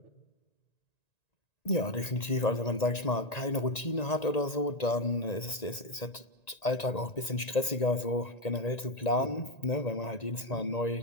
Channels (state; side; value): late; right; 1.9 ms